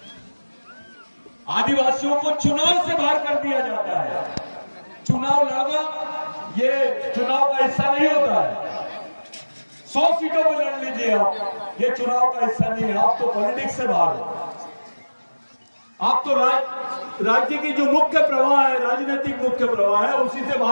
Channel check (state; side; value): inverted; both; correlation -1.00